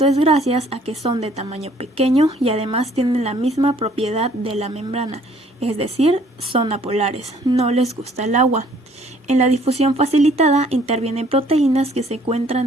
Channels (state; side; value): normal; both; correlation 0.59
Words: es gracias a que son de tamaño pequeño y además tienen la misma propiedad de la membrana, es decir, son apolares, no les gusta el agua. En la difusión facilitada intervienen proteínas que se